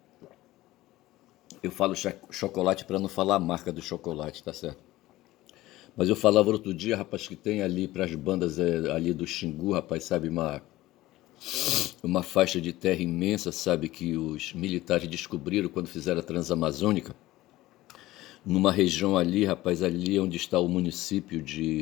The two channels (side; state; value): right; quieter; 17.1 dB